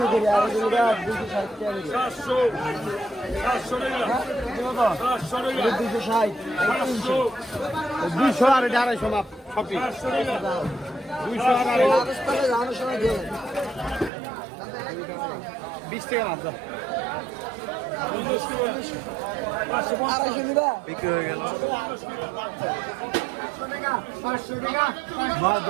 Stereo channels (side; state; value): left; drops out; at 14.1 s